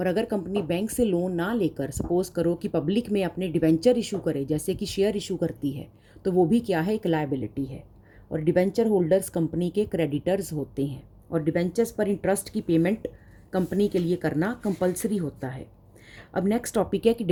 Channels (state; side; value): identical; both; correlation 1.00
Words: अगर कंपनी बैंक से लोन ना लेकर सपोज़ करो कि पब्लिक में अपने डिवेंचर इशू करे, जैसे कि शेयर इशू करती है, तो वो भी क्या है? एक लायबिलिटी है। और डिवेंचर होल्डर्स कंपनी के क्रेडिटर्स होते हैं, और डिवेंचर्स पर इंटरेस्ट की पेमेंट कंपनी के लिए करना कंपलसरी होता है। अब नेक्स्ट टॉपिक है कि